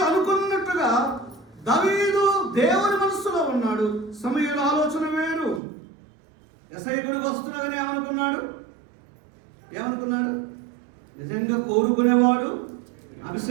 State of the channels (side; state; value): left; drops out; at 5.6 s